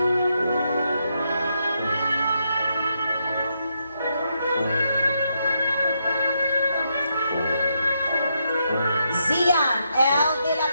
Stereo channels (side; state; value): both; inverted; correlation -0.80